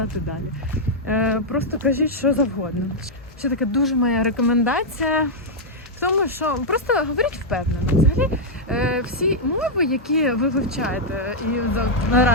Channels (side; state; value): both; normal; correlation -0.04